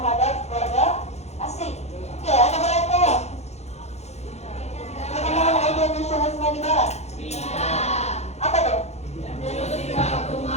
warga asing. Oke, ada berapa perkembangan ide nasionalisme di Barat? Apa tuh?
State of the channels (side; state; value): right; late; 0.32 ms